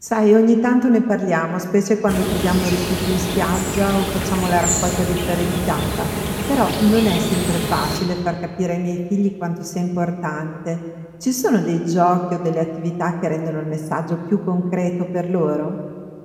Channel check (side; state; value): both; identical; correlation 1.00